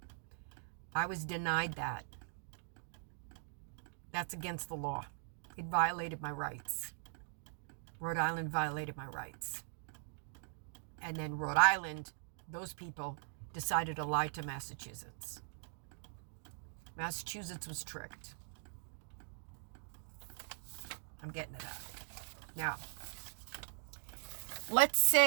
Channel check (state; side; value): silent; left; digital silence